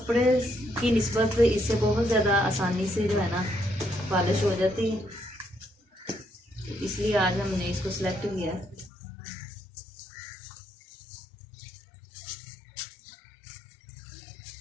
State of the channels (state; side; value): drops out; right; at 8.9 s